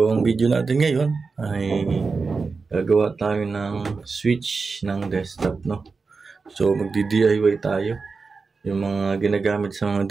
ang video natin ngayon ay gagawa tayo ng switch ng desktop, no? So magdi-DIY tayo yung mga ginagamit sa mga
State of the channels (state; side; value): quieter; left; 4.5 dB